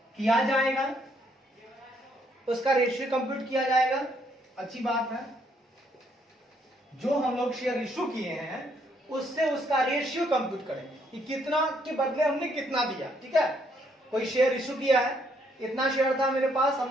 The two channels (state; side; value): normal; both; correlation 0.71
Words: किया जाएगा, अच्छी बात है। जो हम लोग शेयर इश्यू किए हैं उससे उसका रेशियो कंप्यूट करेंगे कि कितना के बदले हमने कितना दिया, ठीक है। कोई शेयर इश्यू किया है, इतना शेयर था मेरे पास,